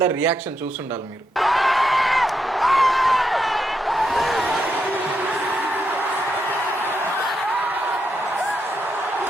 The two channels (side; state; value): both; normal; correlation 0.82